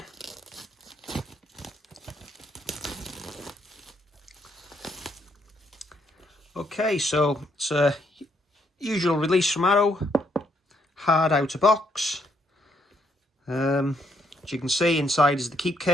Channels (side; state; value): both; normal; correlation 0.73